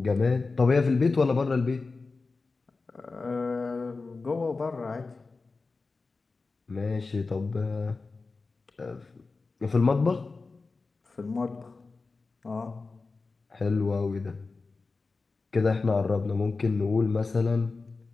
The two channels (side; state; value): right; quieter; 4.0 dB